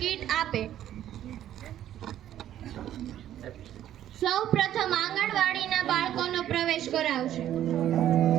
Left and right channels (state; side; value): quieter; left; 11.7 dB